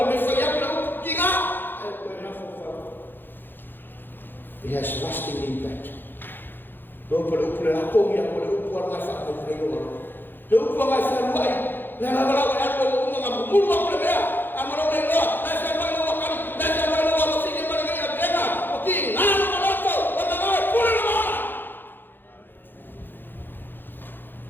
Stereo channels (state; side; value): late; right; 0.096 ms